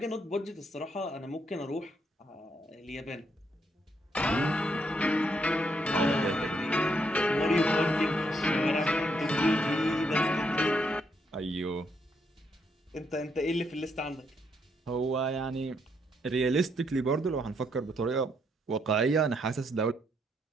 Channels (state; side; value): normal; both; correlation 0.75